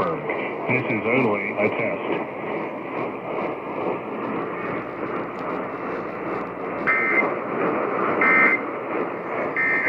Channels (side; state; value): both; identical; correlation 1.00